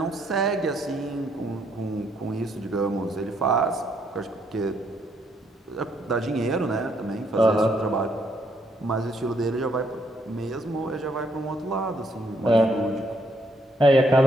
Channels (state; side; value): normal; both; correlation 0.72